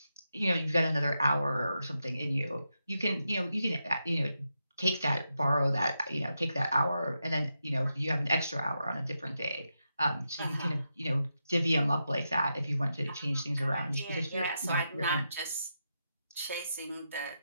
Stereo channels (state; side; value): inverted; both; correlation -0.86